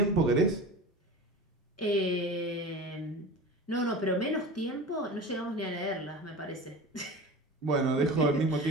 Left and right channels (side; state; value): both; normal; correlation 0.33